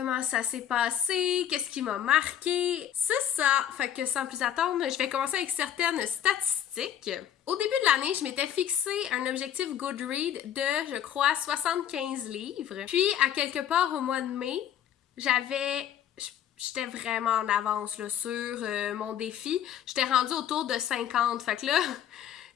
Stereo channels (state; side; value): quieter; right; 10.2 dB